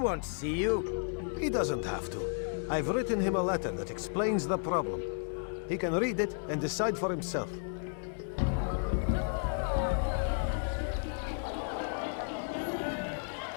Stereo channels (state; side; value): silent; right; 56 dB below the other